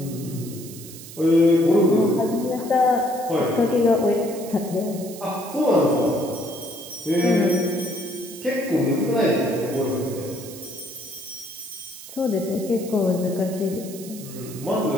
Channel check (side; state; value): right; noise; hiss, 15 dB below the sound